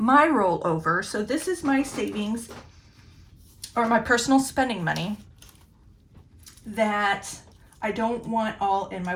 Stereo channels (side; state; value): both; identical; correlation 1.00